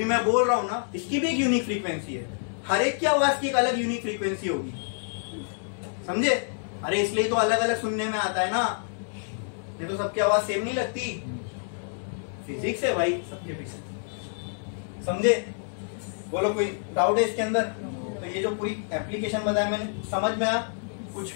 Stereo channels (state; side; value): silent; right; digital silence